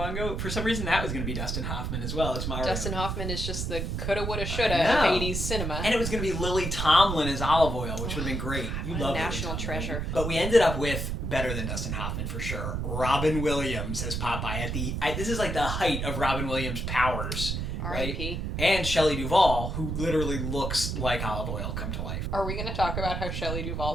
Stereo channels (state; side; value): noise; right; rumble, 2 dB below the sound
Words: ago? For some reason that was going to be Dustin Hoffman as well. It's Mario. Dustin Hoffman is just the coulda, woulda, shoulda of 80s cinema. And it was going to be Lily Tomlin as Olive Oil, which would have been great. You love national treasure. But we ended up with, better than Dustin Hoffman for sure, Robin Williams as Popeye. This is like the height of Robin Williams' powers. R.I.P. Right? And Shelley Duvall, who literally looks like Olive Oil come to life. Are we going to talk about how Shelley